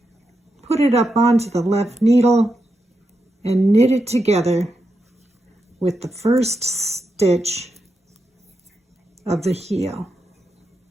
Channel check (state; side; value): normal; both; correlation 0.86